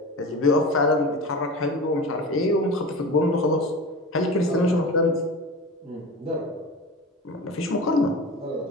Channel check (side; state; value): both; normal; correlation 0.32